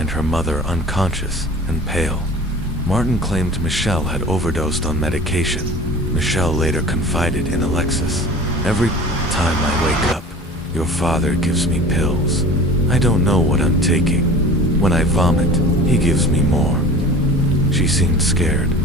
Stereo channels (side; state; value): both; normal; correlation 0.40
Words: her mother unconscious and pale. Martin claimed Michelle had overdosed on medication. Michelle later confided in Alexis, "Every time I wake up, your father gives me pills. I don't know what I'm taking. When I vomit, he gives me more." She seemed scared,